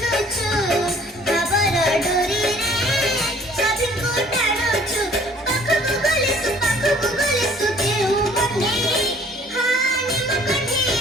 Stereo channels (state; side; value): normal; both; correlation 0.56